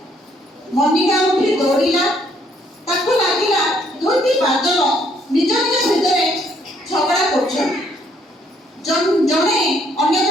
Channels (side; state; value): both; normal; correlation 0.67